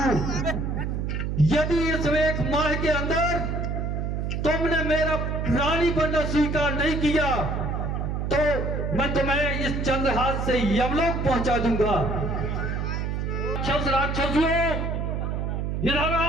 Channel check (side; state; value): right; noise; hum, 1 dB below the sound